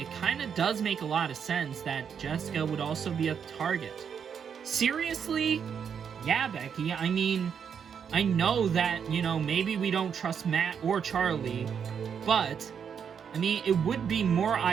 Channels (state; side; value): quieter; left; 7.3 dB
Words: kind of does make a lot of sense that Jessica would also be a target. Seriously? Yeah, Becky, I mean, I know that, you know, maybe we don't trust Matt or Charlie, but, I mean, it would be more